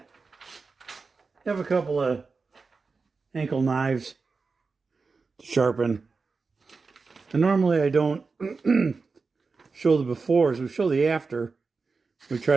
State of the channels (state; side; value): quieter; left; 4.4 dB